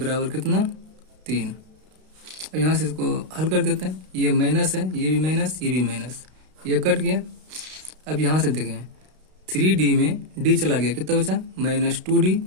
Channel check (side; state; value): left; late; 32 ms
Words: कितना 3। अब यहाँ से इसको हल कर देते हैं। ये माइनस है, ये भी माइनस, ये भी माइनस, ये कट गया। अब यहाँ से देखें 3D में D चला गया, कितना बचा -2D